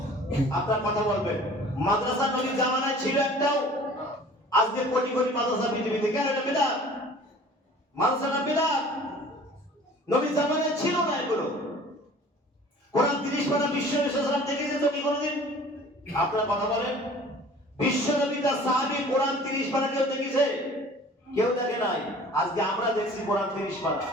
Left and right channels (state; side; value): normal; both; correlation 0.47